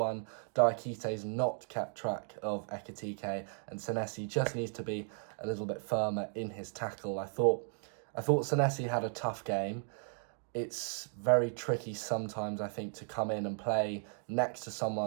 Diakite's not kept track of Ekitike, and Senesi just needs to be a little bit firmer in his tackle. I thought Senesi had a tough game. It's very tricky sometimes, I think, to come in and play next to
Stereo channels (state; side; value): silent; left; 54 dB below the other